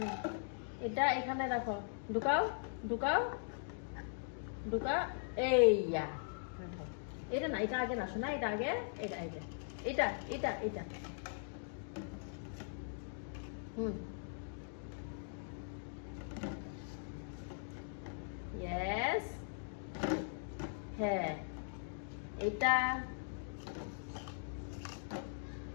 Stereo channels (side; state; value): right; silent; digital silence